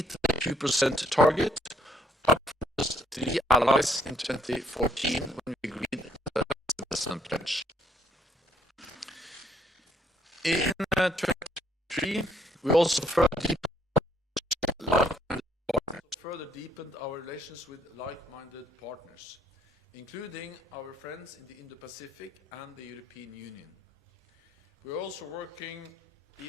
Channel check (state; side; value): normal; both; correlation 0.66